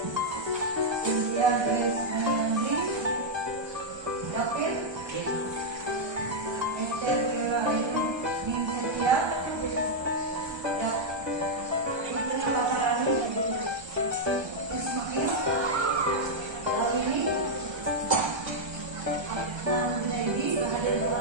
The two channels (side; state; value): left; late; 1.3 ms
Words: India Grace Menandi, David, Esther Kira Ayu Ningsetia, Fitri Paparani, Ismail, Lawini, Nadi,